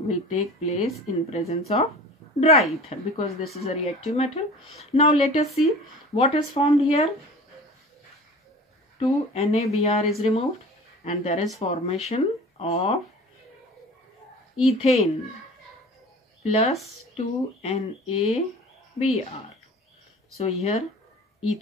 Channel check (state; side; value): normal; both; correlation 0.41